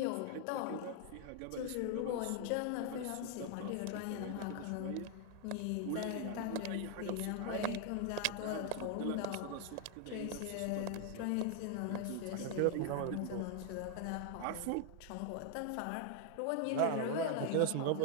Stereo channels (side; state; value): both; different; correlation 0.00